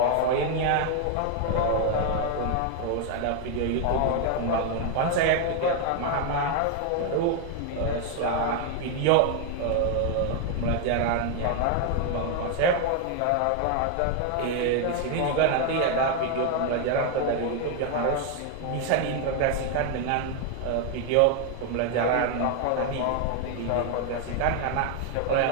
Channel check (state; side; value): different; both; correlation 0.00